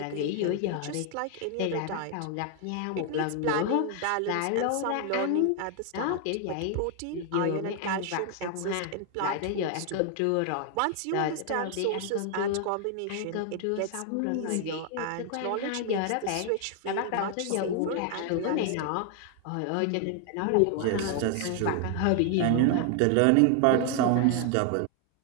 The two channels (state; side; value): different; both; correlation 0.00